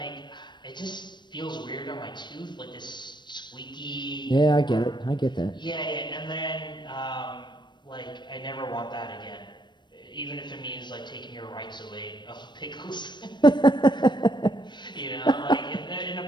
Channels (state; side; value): late; right; 0.22 ms